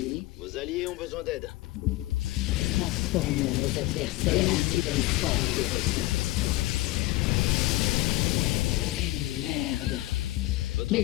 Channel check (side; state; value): right; quieter; 18.8 dB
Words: Vos alliés ont besoin d'aide. Transformons nos adversaires en nouvelles formes de ressources. Merde. Votre